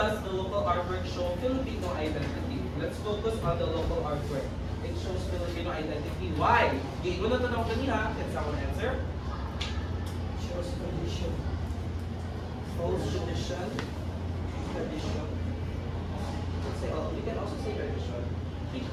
the local artwork show Filipino identity? Let's focus on the local artwork. It shows Filipino identity. Why? Giingon na tanong kanina. Can someone answer? Shows tradition. Shows tradition. Tradition. We can also say tradition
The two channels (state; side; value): identical; both; correlation 1.00